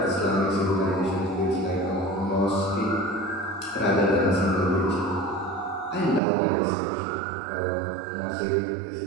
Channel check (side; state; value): left; drops out; at 6.2 s